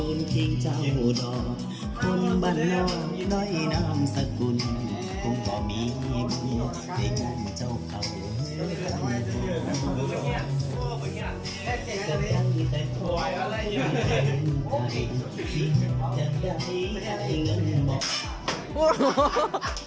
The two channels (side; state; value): both; identical; correlation 1.00